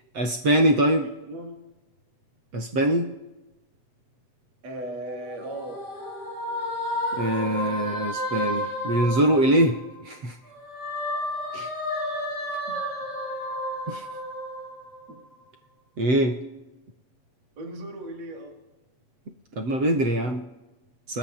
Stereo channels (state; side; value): late; left; 7.9 ms